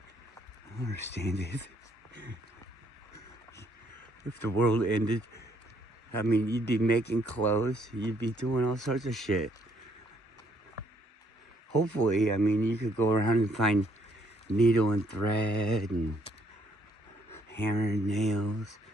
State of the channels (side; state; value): both; normal; correlation 0.69